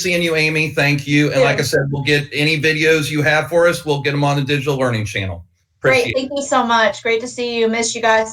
you, Amy. Thank you. And like I said, we'll get any videos you have for us. We'll get them on the Digital Learning Channel. Great. Thank you so much. Great to see you. Miss you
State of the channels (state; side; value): identical; both; correlation 1.00